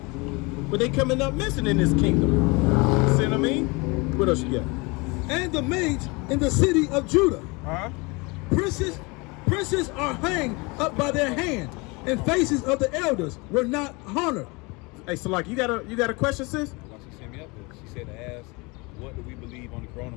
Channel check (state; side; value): quieter; right; 27.0 dB